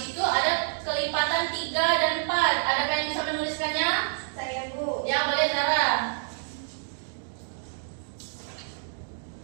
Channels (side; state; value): left; silent; digital silence